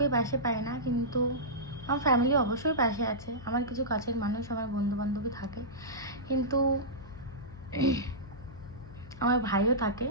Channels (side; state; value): left; noise; hum, 17 dB below the sound